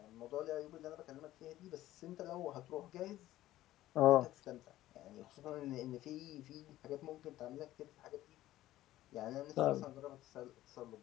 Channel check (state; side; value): quieter; right; 14.8 dB